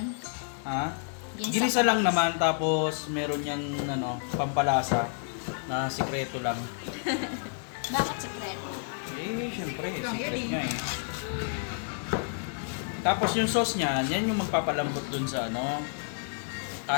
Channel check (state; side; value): silent; right; 58 dB below the other